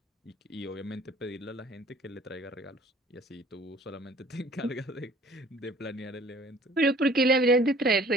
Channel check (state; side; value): normal; both; correlation 0.53